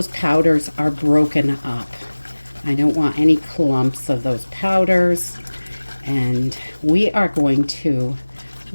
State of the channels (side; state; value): both; inverted; correlation -1.00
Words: powders are broken up. I don't want any clumps of those powders. And we are going to